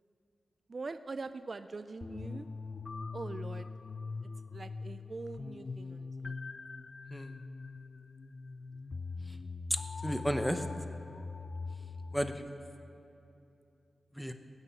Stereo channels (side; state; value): both; normal; correlation 0.95